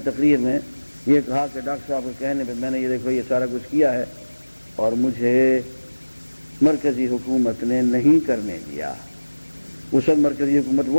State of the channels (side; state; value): both; inverted; correlation -1.00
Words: تقریر میں یہ کہا کہ ڈاکٹر صاحب کے کہنے پہ میں نے یہ دیکھو یہ سارا کچھ کیا ہے اور مجھے مرکزی حکومت نے نہیں کرنے دیا. اس وقت مرکزی حکومت